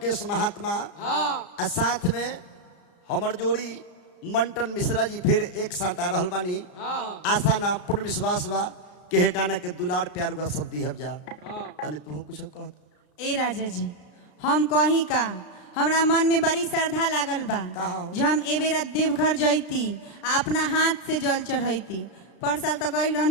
महात्मा और साथ में हमर जोड़ी मंटन मिश्रा जी फिर एक साथ आ रहल बानी। आशा ना पूर्ण विश्वास बा के हे गाना के दुलार प्यार हुआ सब दी जा तने तू कुछ कह। ए राजा जी हम कही का हमरा मन में बड़ी श्रद्धा लागल बा जो हम ए बेरा देवघर जैती अपना हाथ से जल चढ़ैती। पर साल तो गई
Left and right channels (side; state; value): right; late; 33 ms